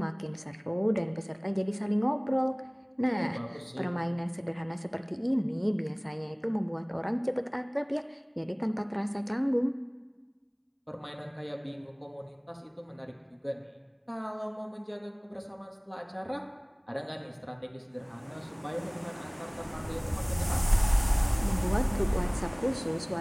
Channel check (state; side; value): identical; both; correlation 1.00